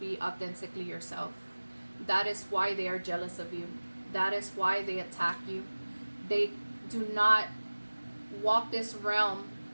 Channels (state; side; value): inverted; both; correlation -1.00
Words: authentically yourself. That is why they are jealous of you. That is why they attack you. They do not walk this realm